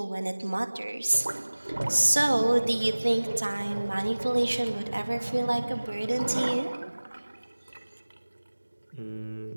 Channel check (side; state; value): both; inverted; correlation -1.00